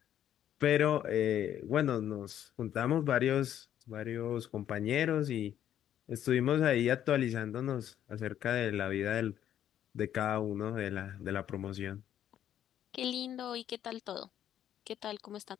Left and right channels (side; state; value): right; quieter; 10.7 dB